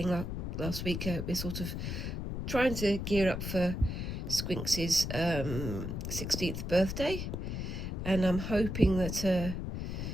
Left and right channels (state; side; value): noise; left; rumble, 4 dB below the sound